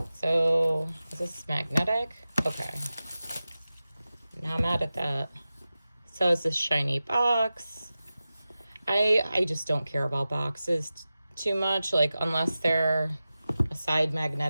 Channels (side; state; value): both; inverted; correlation -0.94